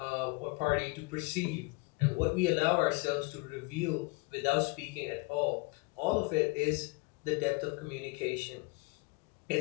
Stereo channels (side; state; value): right; quieter; 27.1 dB